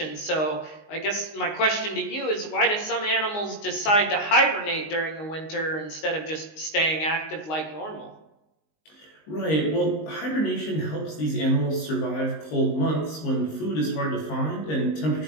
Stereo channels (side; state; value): right; late; 19 ms